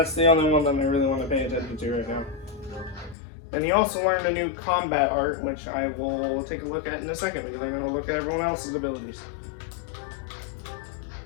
the only one that I really want to pay attention to right now. And he also learned a new combat art, which I will take a look at in a second, because I'm going to look at everyone else's abilities.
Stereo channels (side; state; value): right; drops out; at 3.2 s